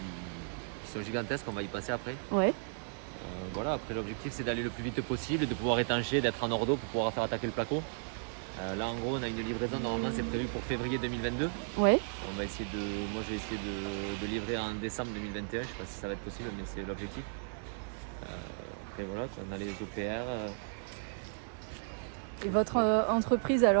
sont gigantesques. On va y passer après. Ouais. Voilà, après l'objectif c'est d'aller le plus vite possible, de pouvoir étancher, d'être en ordo pour pouvoir faire attaquer le placo. Là en gros on a une livraison, normalement c'est prévu pour février 2022. Ouais. Moi je vais essayer de livrer en décembre 2021, je sais pas si ça va être possible mais c'est l'objectif. Après voilà, on a les OPR. Et votre entreprise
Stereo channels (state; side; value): silent; left; 55 dB below the other